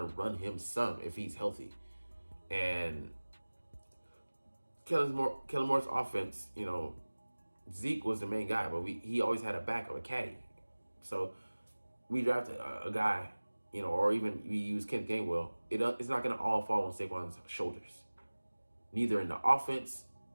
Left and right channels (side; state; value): both; inverted; correlation -1.00